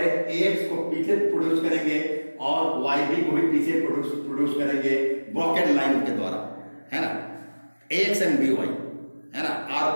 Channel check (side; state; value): both; inverted; correlation -1.00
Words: AX को पीछे प्रोड्यूस करेंगे और YB को भी पीछे प्रोड्यूस करेंगे ब्रॉकेट लाइन के द्वारा, है ना। AX एंड BY, है ना, are